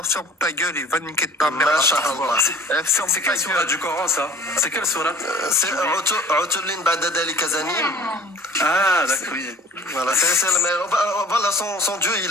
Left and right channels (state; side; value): normal; both; correlation 0.48